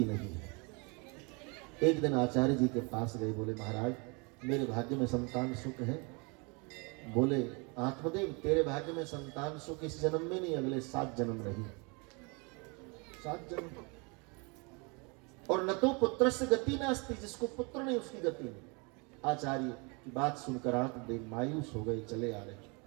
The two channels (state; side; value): quieter; left; 30.8 dB